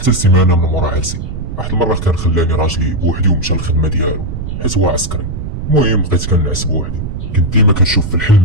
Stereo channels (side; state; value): right; noise; rumble, 6 dB below the sound